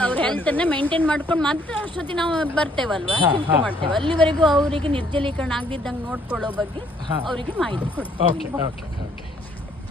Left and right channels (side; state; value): both; normal; correlation 0.65